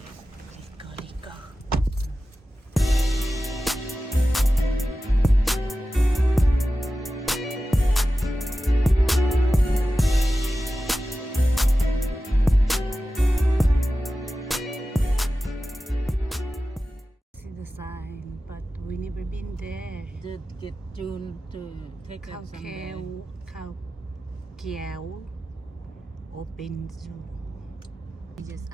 let's go, let's go. See the sign, but we never been there. Did get June to take us someday. Khao Kiao Open Zoo. We just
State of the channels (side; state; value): both; normal; correlation 0.94